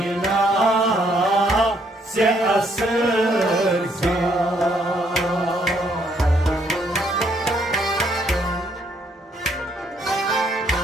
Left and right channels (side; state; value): both; normal; correlation 0.70